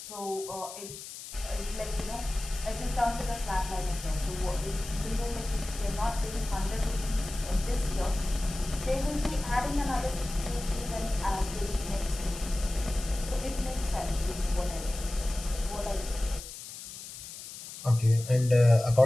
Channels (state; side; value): noise; left; hiss, 12 dB below the sound